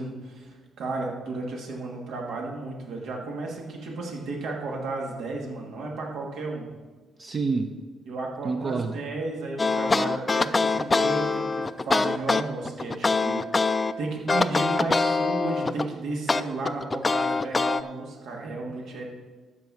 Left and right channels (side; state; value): both; normal; correlation 0.87